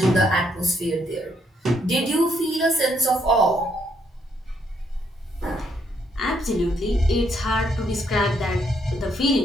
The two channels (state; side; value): normal; both; correlation 0.73